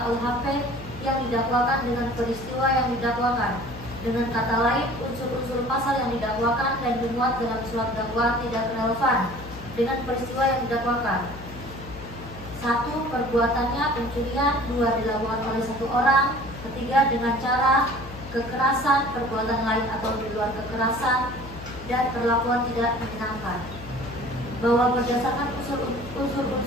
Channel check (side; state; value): left; noise; hum, 15 dB below the sound